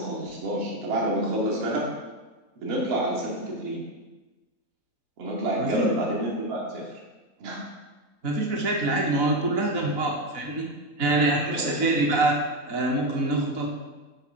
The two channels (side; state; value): left; late; 4.0 ms